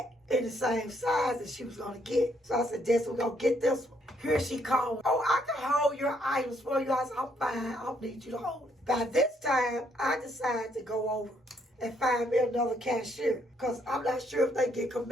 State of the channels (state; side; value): normal; both; correlation 0.71